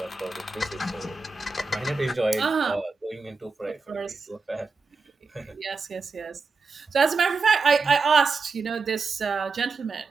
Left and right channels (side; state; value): left; quieter; 4.3 dB